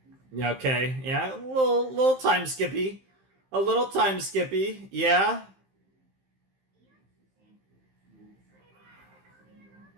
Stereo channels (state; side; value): late; left; 15 ms